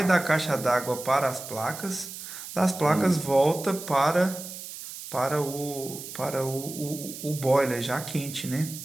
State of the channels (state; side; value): noise; right; hiss, 11 dB below the sound